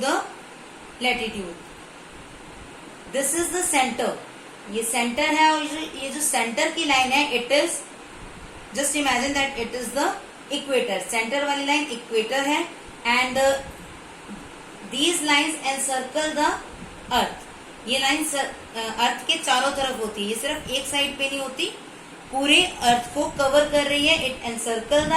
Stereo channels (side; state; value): both; identical; correlation 1.00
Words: latitude. This is the centre. ये सेंटर है और ये जो सेंटर की लाइन है it is, just imagine that it is the equator, centre वाली लाइन इक्वेटर है and these lines encircle the earth. ये लाइन अर्थ के चारों तरफ होती है, ये सिर्फ एक साइड पे नहीं होती, पूरे अर्थ को कवर कर रही है। इट एनसर्कल द